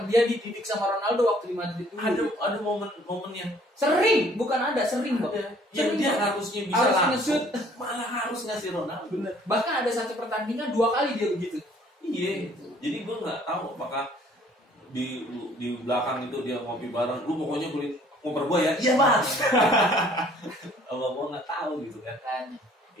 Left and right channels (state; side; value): normal; both; correlation 0.58